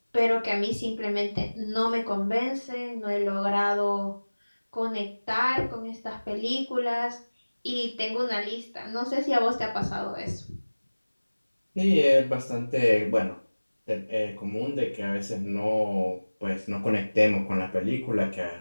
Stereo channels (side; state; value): both; inverted; correlation -1.00